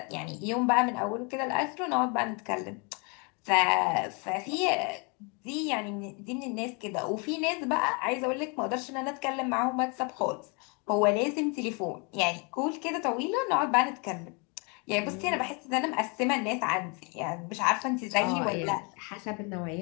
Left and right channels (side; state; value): right; quieter; 33.0 dB